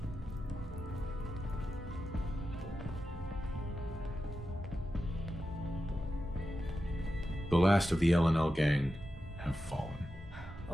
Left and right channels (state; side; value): normal; both; correlation 0.91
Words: The last of the L&L gang have fallen.